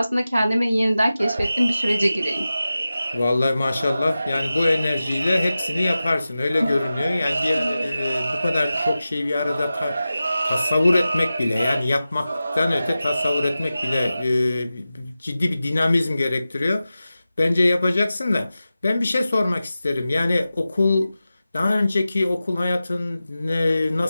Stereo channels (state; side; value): inverted; both; correlation -0.94